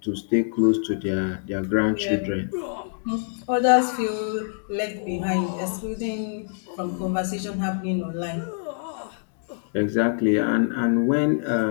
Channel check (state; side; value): silent; right; digital silence